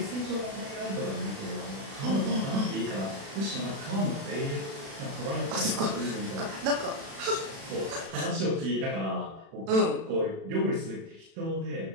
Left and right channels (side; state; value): left; late; 36 ms